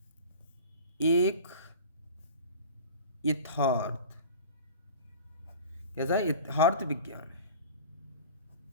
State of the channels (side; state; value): both; inverted; correlation -0.38